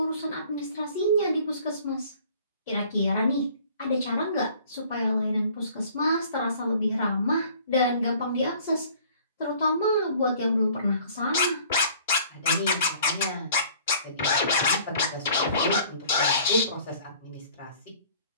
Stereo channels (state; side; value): inverted; both; correlation -0.53